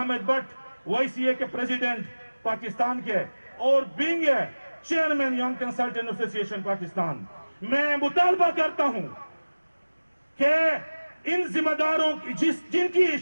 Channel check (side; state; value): both; inverted; correlation -1.00